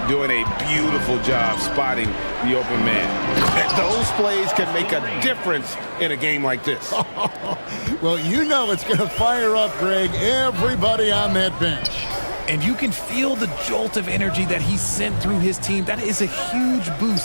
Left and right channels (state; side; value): inverted; both; correlation -1.00